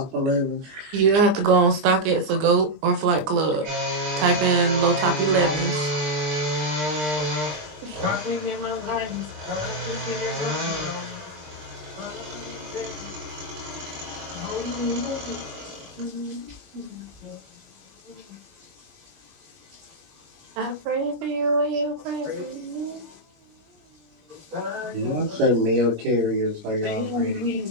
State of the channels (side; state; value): left; late; 20 ms